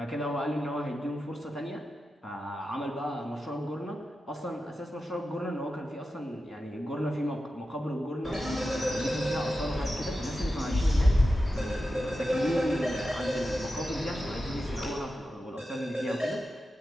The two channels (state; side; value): normal; both; correlation 0.91